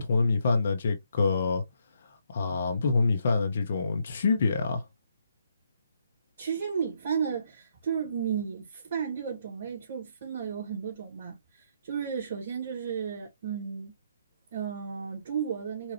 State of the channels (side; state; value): both; inverted; correlation -0.74